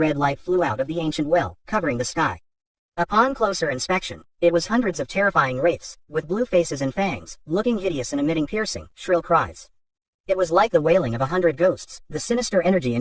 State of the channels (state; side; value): identical; both; correlation 1.00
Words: light flew out of the ancient well, covering the sky. Upon closer inspection, it was hundreds of terrifying wraiths, with blue faces and fangs, looking hideous and emitting piercing, shrill cries. It was like the wailing of 100 ghosts, the sinister energy